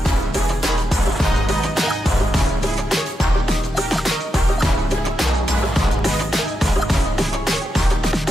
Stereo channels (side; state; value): both; normal; correlation 0.85